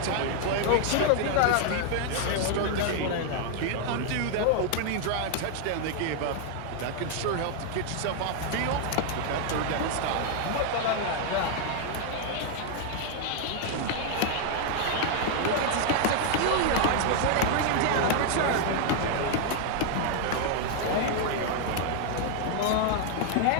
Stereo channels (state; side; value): different; both; correlation 0.00